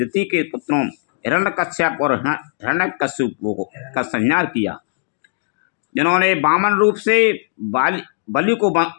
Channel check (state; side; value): silent; right; digital silence